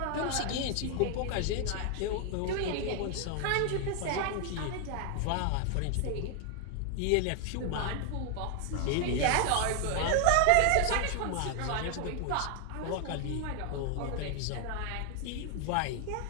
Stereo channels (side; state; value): both; different; correlation 0.00